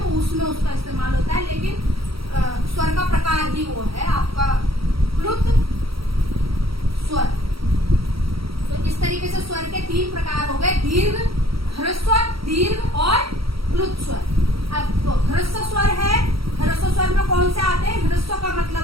उसमें उसका इस्तेमाल होता है, लेकिन स्वर का प्रकार ही वो है आपका प्लुत स्वर। तो इस तरीके से स्वर के 3 प्रकार हो गए, दीर्घ, ह्रस्व, दीर्घ और प्लुत स्वर। अब तो ह्रस्व स्वर है, ह्रस्व स्वर में कौन से आते हैं? ह्रस्व का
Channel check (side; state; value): left; late; 0.75 ms